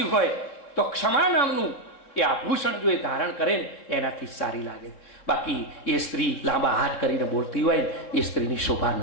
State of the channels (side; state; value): right; late; 3.6 ms